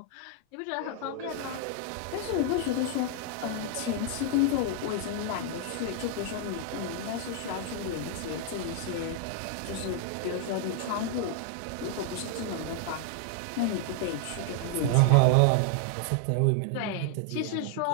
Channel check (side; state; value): both; different; correlation 0.00